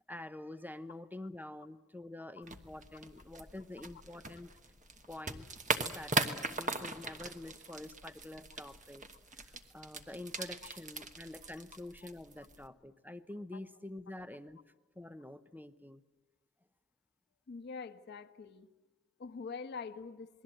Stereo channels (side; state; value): both; normal; correlation 0.30